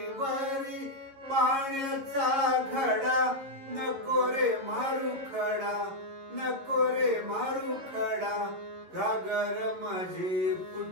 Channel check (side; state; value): left; late; 11 ms